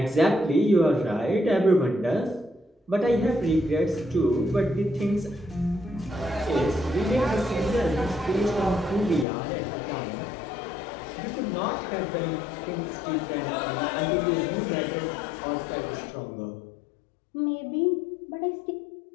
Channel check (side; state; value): right; drops out; at 9.2 s